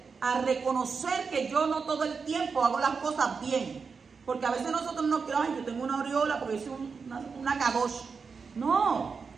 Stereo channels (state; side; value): quieter; left; 5.3 dB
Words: a reconocer que yo no todo el tiempo hago las cosas bien. Porque a veces nosotros nos creemos, ay, yo tengo una aureola porque soy una kadosh. No,